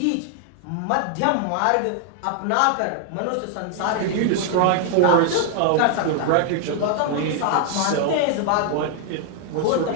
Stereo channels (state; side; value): different; both; correlation 0.00